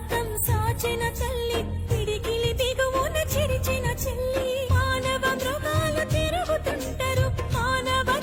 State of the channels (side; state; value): both; identical; correlation 1.00